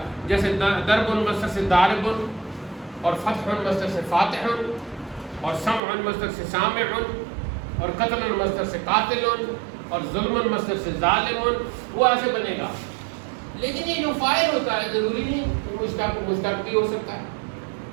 جیسے ضرب مصدر سے ضارب, اور فتح مصدر سے فاتح, اور سمع مصدر سے سامع, اور قتل مصدر سے قاتل, اور ظلم مصدر سے ظالم, وہ ایسے بنے گا. لیکن یہ جو فاعل ہوتا ہے ضروری نہیں مشتق بھی ہو سکتا ہے.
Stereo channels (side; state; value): left; drops out; at 5.8 s